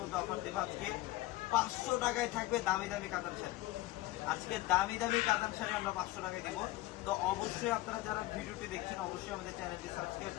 মধ্যে অফার দেবো। আজকে 500 টাকায় থাকবে দামি দামি কাতান শাড়ি। আজকে দামি দামি কাতান শাড়ি আমরা 500 টাকায় দেবো। তো অবশ্যই আপনারা যারা ভিডিওটি দেখছেন অবশ্যই আমাদের চ্যানেলটি সাবস্ক্রাইব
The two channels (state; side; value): quieter; right; 17.5 dB